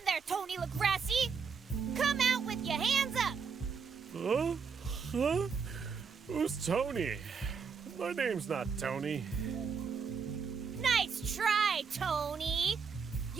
there, Tony LaGrassi! Come out with your hands up! Huh? Huh? Who's Tony? My name's not Tony. Nice try, Tony!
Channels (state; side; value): quieter; left; 5.8 dB